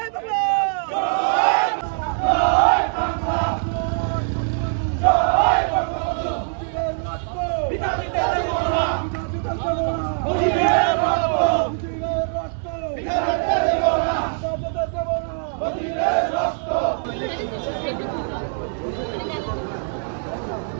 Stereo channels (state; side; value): silent; left; 58 dB below the other